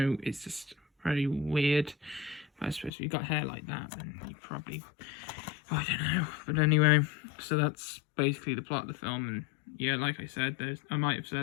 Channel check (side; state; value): right; drops out; at 2.9 s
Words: it's just very weird. But I suppose if you've got hair like that, then you probably, I don't know. But anyway, so that's basically the plot of the film. And yeah, like I said, I might have